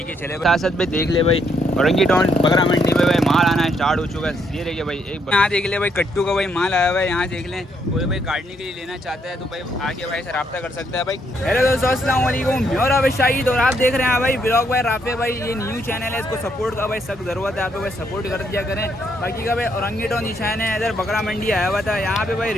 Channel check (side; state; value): both; normal; correlation 0.73